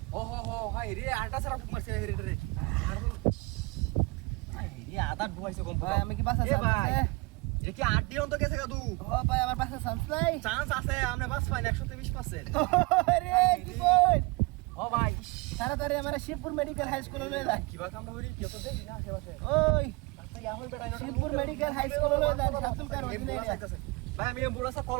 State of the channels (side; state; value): left; quieter; 25.9 dB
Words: ও হো হাই রে আটা সারা মারছে রে আই রে আদা ডুবাইছে কম ভাই আমি কি বাসা এ ভাই চান্স এটা কি 8 অন্ত গেছে কাদু ও ভাই আমার বাসা চান্স নাই চান্স আছে আমরা বাস পাই 120% আরে কি বল ও ভাই তাড়াতাড়ি আমার শিবপুর মেডিকেল হাই স্কুলে লয়ে যান কিবা কামড়া হরি কি তো দেখি না আশেপাশে ওই আচ্ছা ইয়া হই বেটা শিবপুর মেডিকেল হাই স্কুলে লয়ে যান সাতুল কার অধীনে ভাই আমি এম্বুলেন্সে কল